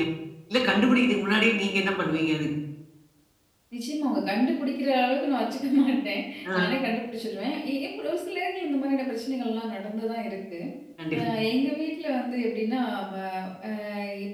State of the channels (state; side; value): identical; both; correlation 1.00